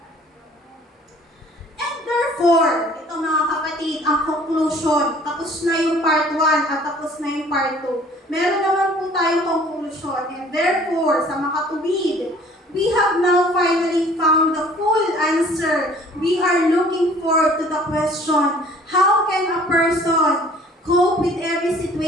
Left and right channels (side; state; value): both; normal; correlation 0.53